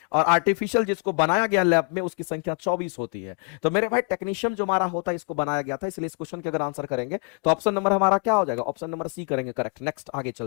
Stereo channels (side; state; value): right; quieter; 35.1 dB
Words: और आर्टिफिशियल जिसको बनाया गया लैब में उसकी संख्या 24 होती है। तो मेरे भाई टेक्नीशियम जो हमारा होता है इसको बनाया गया था, इसलिए इस क्वेश्चन के अगर आंसर करेंगे तो ऑप्शन नंबर हमारा क्या हो जाएगा, ऑप्शन नंबर सी करेंगे करेक्ट। नेक्स्ट आगे